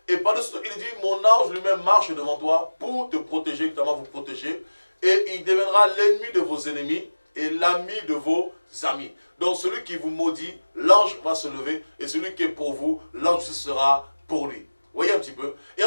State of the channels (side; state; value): both; inverted; correlation -1.00